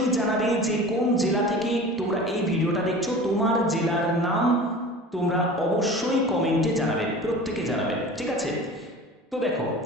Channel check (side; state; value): both; normal; correlation 0.38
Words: জানাবে যে কোন জেলা থেকে তোমরা এই ভিডিওটা দেখছো। তোমার জেলার নাম তোমরা অবশ্যই কমেন্টে জানাবে, প্রত্যেকে জানাবে, ঠিক আছে? তো দেখো,